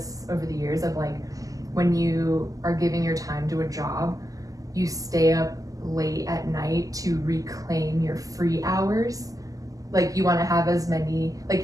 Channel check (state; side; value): late; left; 0.17 ms